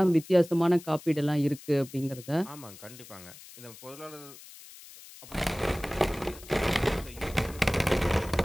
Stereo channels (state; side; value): noise; left; hiss, 18 dB below the sound